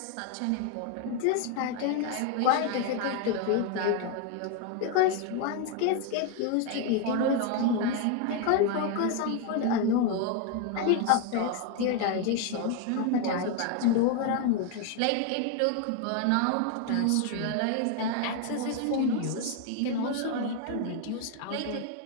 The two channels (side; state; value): both; different; correlation 0.01